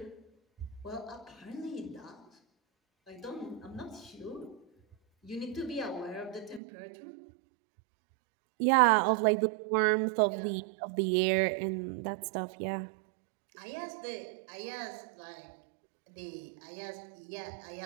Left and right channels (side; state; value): left; drops out; at 6.6 s